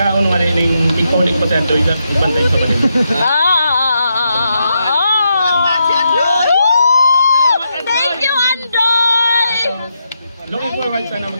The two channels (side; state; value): both; inverted; correlation -0.82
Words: wala yung ikaw pa sa doy lang, ibantay sa palibaga. Thank you, Andoy! Looking forward sana